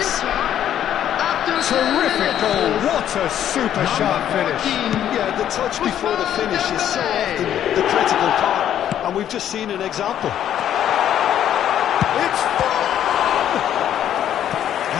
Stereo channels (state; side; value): quieter; right; 10.6 dB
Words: Terrific goal, what a super sharp finish. Yeah, the touch before the finish is so often the critical part, and we've just seen an example. It's full!